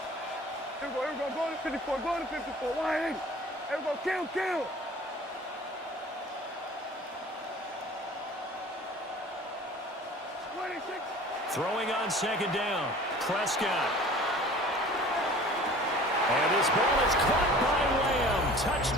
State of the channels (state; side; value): normal; both; correlation 0.45